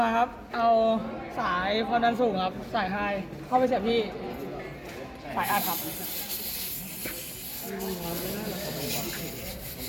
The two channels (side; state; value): both; identical; correlation 1.00